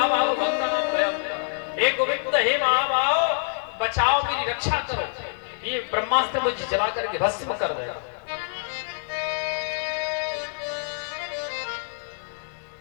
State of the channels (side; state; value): right; silent; digital silence